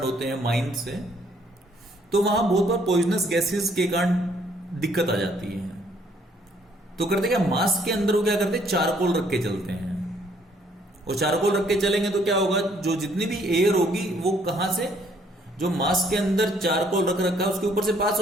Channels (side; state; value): both; normal; correlation 0.65